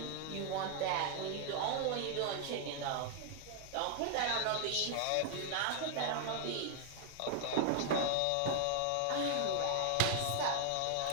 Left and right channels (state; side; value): different; both; correlation 0.00